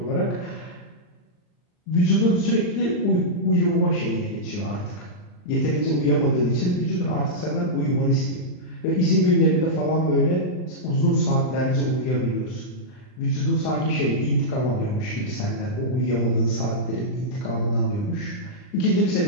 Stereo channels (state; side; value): late; right; 39 ms